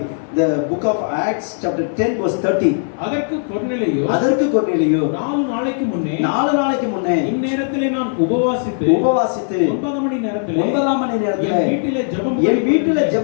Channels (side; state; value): right; silent; digital silence